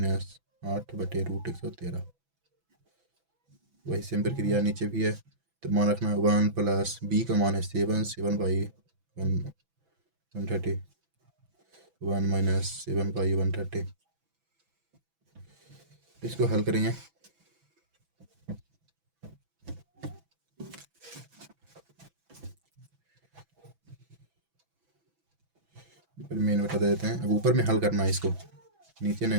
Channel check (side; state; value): left; late; 6.0 ms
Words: 8 बटे √113। वही सेम प्रक्रिया नीचे भी है। तो मान रखना है 1 प्लस बी का मान है 7/130, 1 माइनस 7/130। इसको हल करेंगे। मेन बता देते हैं। अब ऊपर में हल करना है इसको, नीचे